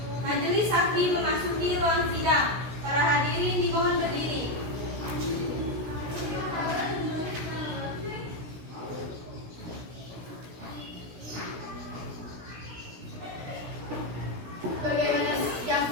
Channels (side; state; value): left; late; 16 ms